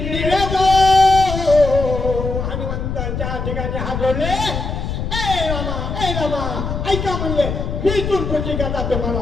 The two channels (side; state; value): left; noise; rumble, 4 dB below the sound